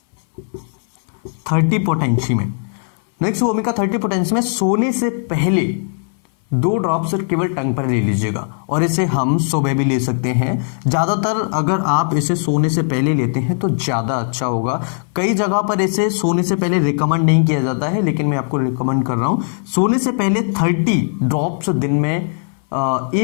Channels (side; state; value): right; silent; 62 dB below the other